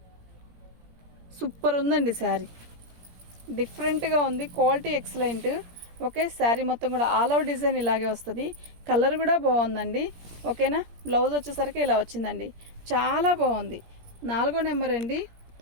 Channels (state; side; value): late; left; 17 ms